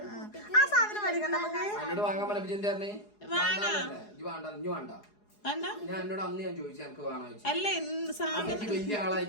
ആ സാധനം മേടിക്കണ്ട നമുക്ക്. അല്ല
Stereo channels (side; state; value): right; late; 4.8 ms